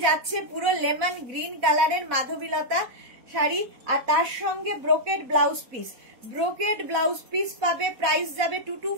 যাচ্ছে পুরো লেমন গ্রিন কালারের মাধবীলতা শাড়ি, আর তার সঙ্গে brocade blouse piece, brocade blouse piece পাবে, প্রাইস যাবে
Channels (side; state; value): left; late; 4.1 ms